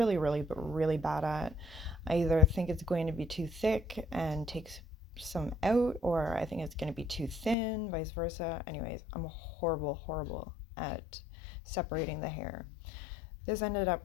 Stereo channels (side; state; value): right; drops out; at 7.6 s